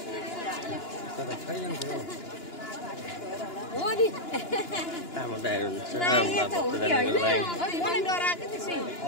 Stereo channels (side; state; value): right; late; 2.9 ms